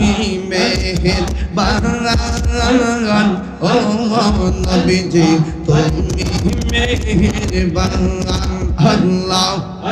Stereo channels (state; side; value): identical; both; correlation 1.00